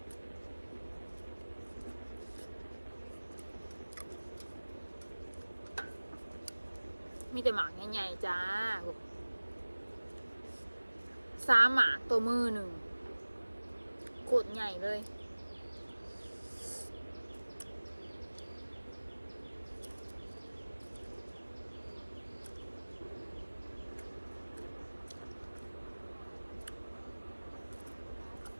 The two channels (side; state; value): both; inverted; correlation -1.00